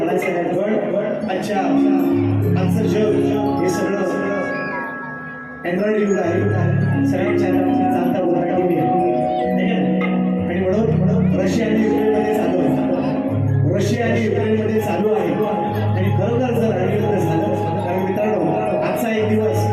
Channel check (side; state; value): both; identical; correlation 1.00